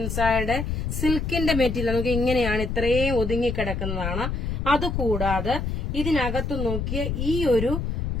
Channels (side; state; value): left; noise; rumble, 2 dB below the sound